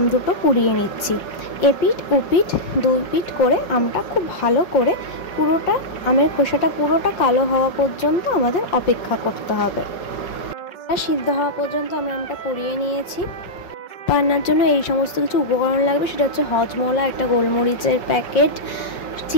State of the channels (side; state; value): right; late; 5.4 ms